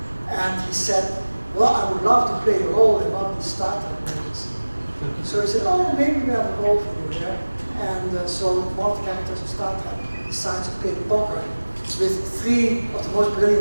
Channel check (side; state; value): both; inverted; correlation -1.00